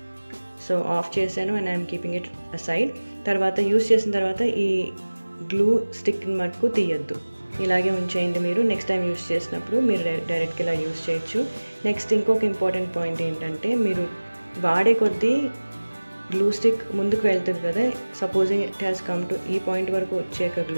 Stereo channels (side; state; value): both; inverted; correlation -1.00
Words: So of చేశాను and I'm keeping it aside. తర్వాత use చేసిన తర్వాత ఈ గ్లూ స్టిక్ మటుకు తీయద్దు, ఇలాగే ఉంచేయండి. మీరు నెక్స్ట్ టైం యూస్ చేసినప్పుడు మీరు డైరెక్ట్గా ఇలా యూస్ చేయొచ్చు. నెక్స్ట్ ఇంకొక ఇంపార్టెంట్ పాయింట్ ఏంటంటే మీరు వాడే కొద్దీ గ్లూ స్టిక్ ముందుకు వెళ్తుంది కదా. Supposing it has come to ఈ పాయింట్ వరకు వచ్చాక